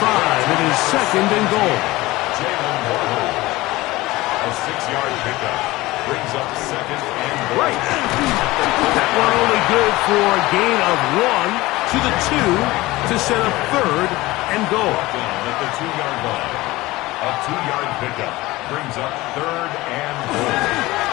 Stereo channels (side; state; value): right; quieter; 19.4 dB